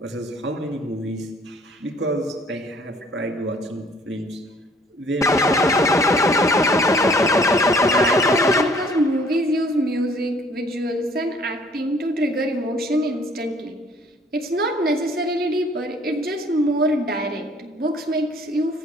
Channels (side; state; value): both; normal; correlation 0.58